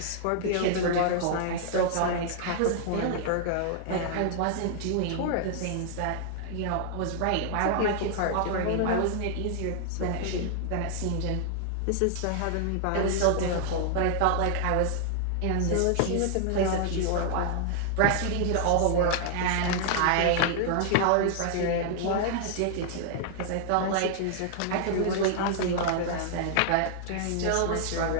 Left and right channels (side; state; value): both; different; correlation -0.01